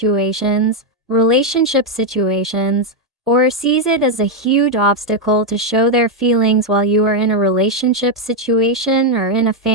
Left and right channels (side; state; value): both; normal; correlation 0.02